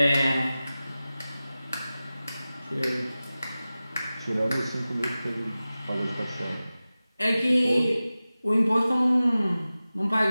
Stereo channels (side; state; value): both; inverted; correlation -0.96